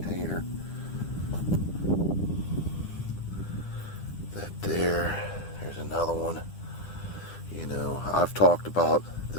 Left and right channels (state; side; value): late; right; 10 ms